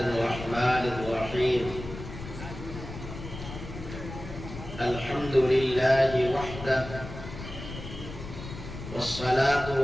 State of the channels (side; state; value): left; noise; rumble, 11 dB below the sound